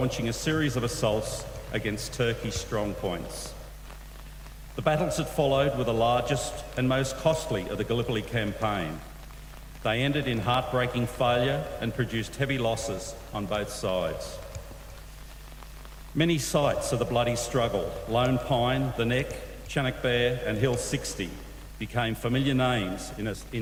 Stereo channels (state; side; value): identical; both; correlation 1.00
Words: a series of assaults against Turkey's strong points. The battles that followed were the largest and most costly of the Gallipoli campaign. They ended in heartbreaking failure and produced heavy losses on both sides. Many sites of the bloody struggle, Lone Pine, the Neck, Chinook Bear and Hill 60, became familiar names